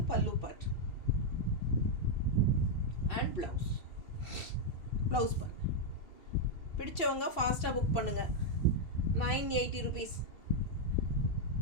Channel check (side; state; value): right; late; 2.6 ms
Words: பல்லு பார்ட் அண்ட் ப்ளவுஸ் பார்ட். பிடிச்சவங்க ஃபாஸ்ட்டாக புக் பண்ணுங்கள். 980 rupees.